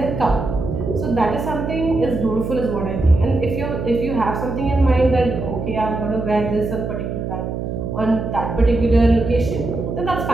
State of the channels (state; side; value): noise; right; hum, 4 dB below the sound